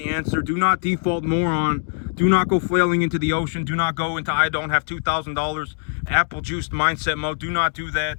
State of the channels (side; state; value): right; silent; 64 dB below the other